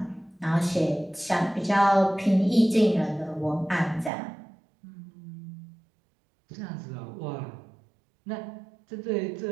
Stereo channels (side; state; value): left; drops out; at 4.1 s